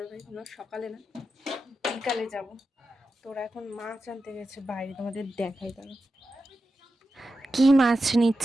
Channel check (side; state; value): both; normal; correlation 0.91